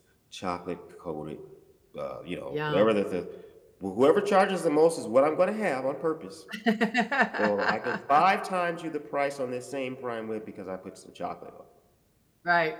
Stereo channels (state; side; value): identical; both; correlation 1.00